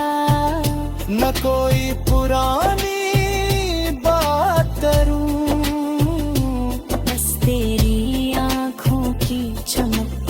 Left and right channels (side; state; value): both; identical; correlation 1.00